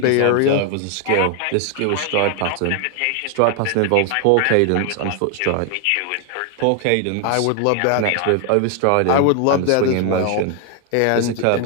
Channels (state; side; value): different; both; correlation 0.00